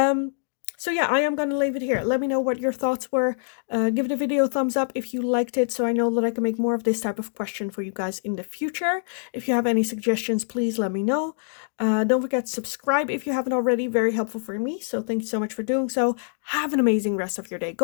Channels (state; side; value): silent; right; digital silence